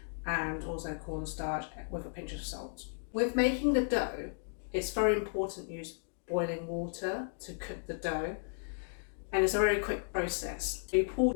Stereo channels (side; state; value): right; silent; digital silence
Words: and also cornstarch with a pinch of salt. With making the dough, it's very important to use boiling water to cook the dough, and it's a very quick process. You pour